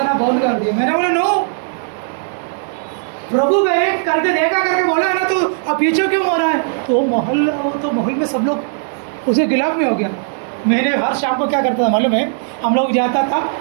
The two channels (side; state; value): left; silent; digital silence